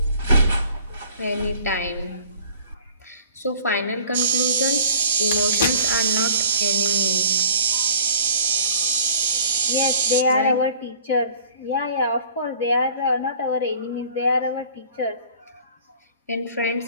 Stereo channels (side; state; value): both; inverted; correlation -0.49